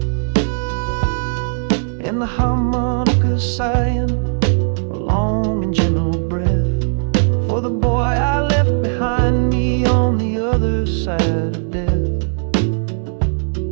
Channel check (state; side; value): silent; left; digital silence